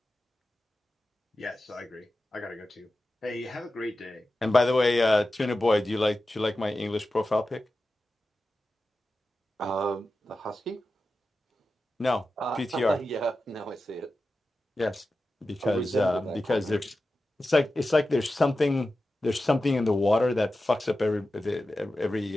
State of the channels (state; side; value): normal; both; correlation 0.93